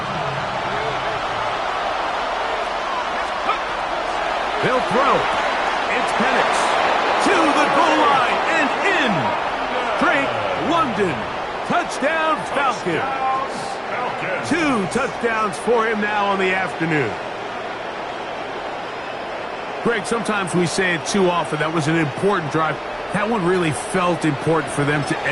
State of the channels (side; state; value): both; identical; correlation 1.00